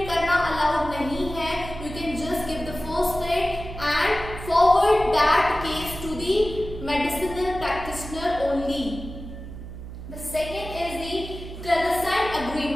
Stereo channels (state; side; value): noise; right; hum, 11 dB below the sound